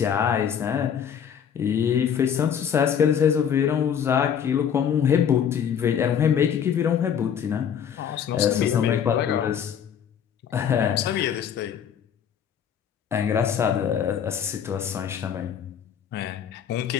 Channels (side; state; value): right; quieter; 8.3 dB